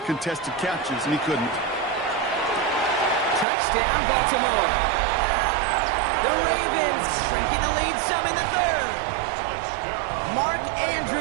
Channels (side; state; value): left; drops out; at 3.5 s